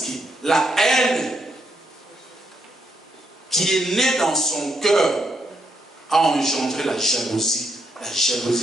la haine qui est née dans son cœur a engendré la jalousie. La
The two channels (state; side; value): normal; both; correlation 0.78